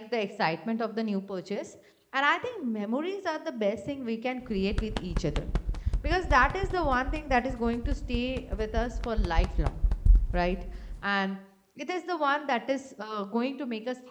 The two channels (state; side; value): identical; both; correlation 1.00